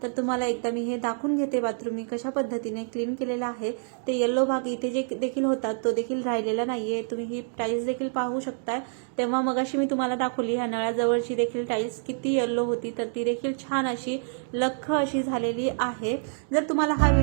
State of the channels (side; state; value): left; silent; 60 dB below the other